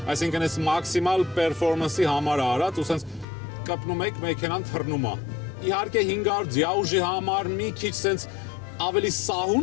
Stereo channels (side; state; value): right; drops out; at 3.2 s